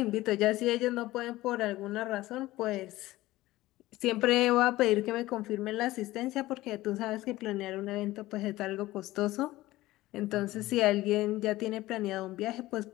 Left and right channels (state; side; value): quieter; right; 17.4 dB